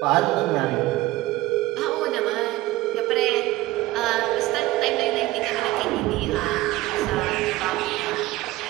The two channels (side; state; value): left; quieter; 17.8 dB